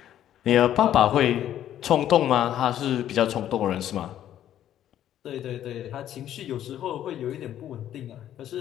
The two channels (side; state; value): right; quieter; 11.3 dB